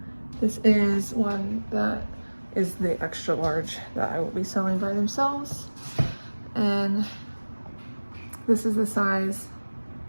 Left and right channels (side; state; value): both; inverted; correlation -1.00